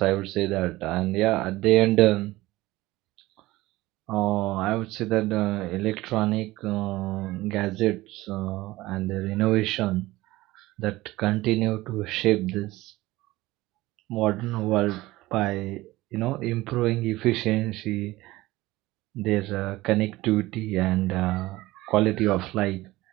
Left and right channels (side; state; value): left; quieter; 18.5 dB